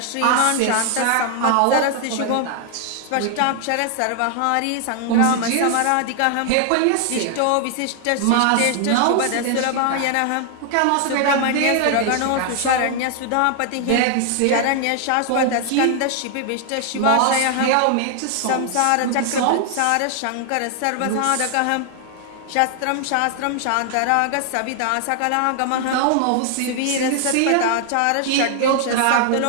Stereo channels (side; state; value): both; different; correlation 0.00